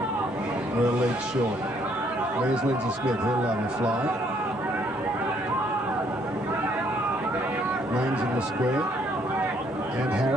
We're a lead short. There's Lindsay Smith, he'll love a fly. Lane's in the square. and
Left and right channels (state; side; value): normal; both; correlation 0.67